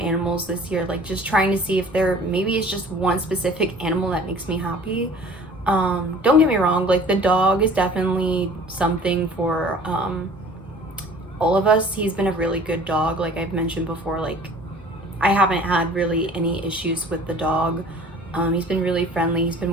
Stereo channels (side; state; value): both; normal; correlation 0.48